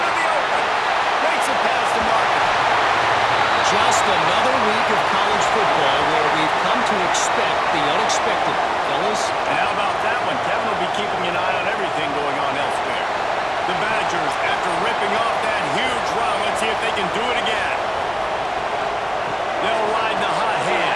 the open. Makes it past the marker. Just another week of college football where we've come to expect the unexpected, fellas. And how about that one? Kevin will be keeping an eye on everything going on elsewhere. The Badgers, after ripping off that huge run, let's see if they can do it again. They'll ride the hot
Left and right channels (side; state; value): both; identical; correlation 1.00